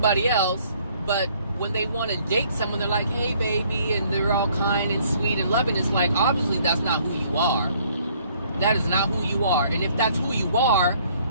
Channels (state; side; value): inverted; both; correlation -0.62